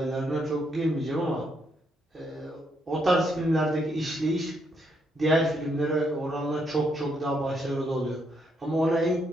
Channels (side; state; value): both; normal; correlation 0.76